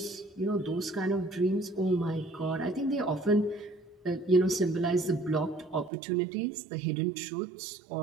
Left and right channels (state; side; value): drops out; left; at 5.9 s